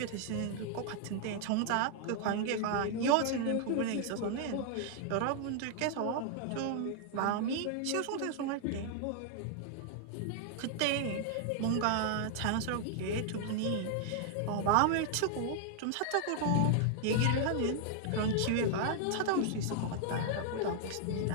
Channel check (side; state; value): both; different; correlation -0.01